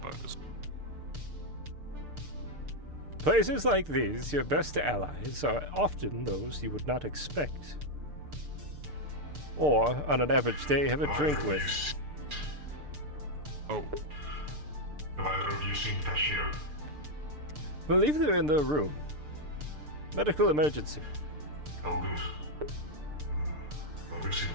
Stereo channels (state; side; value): late; left; 6.7 ms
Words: Places like these, your best allies are often those you would not expect. Or, on an average day, have a drink with. Oh. Have either of you seen Tashir? Believe they're in their room. Medical emergency. All good. Well, we've seen